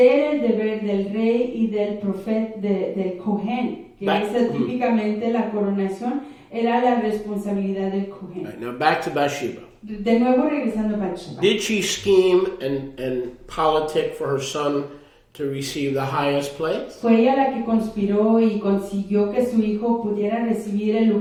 el deber del rey y del profeta, del Kohen, que es típicamente la coronación, era la responsabilidad del Kohen. Right, now back to Bathsheba. De nuevo regresando a Bathsheba. Did she scheme and politic for her son to receive the highest place? ¿Fue ella la que conspiró y consiguió que su hijo pudiera recibir el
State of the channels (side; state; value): both; identical; correlation 1.00